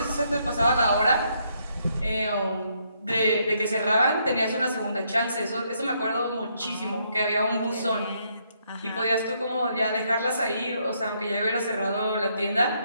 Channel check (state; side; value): inverted; both; correlation -0.74